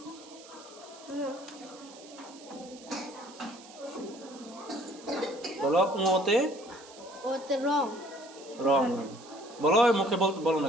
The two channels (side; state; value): right; noise; hiss, 20 dB below the sound